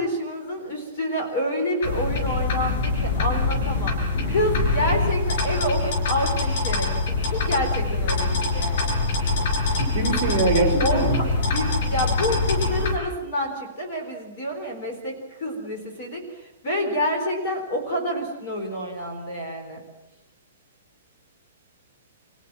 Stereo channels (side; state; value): both; inverted; correlation -0.41